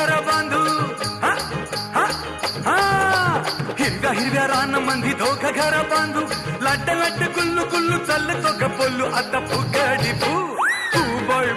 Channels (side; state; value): both; identical; correlation 1.00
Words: बांधू हा हा हा हिरव्या हिरव्या रानामंदी दोघं घर बांधू लाट लाट गुल्लू गुल्लू चालतो ग बोलू आता फुगडी फू फू बाई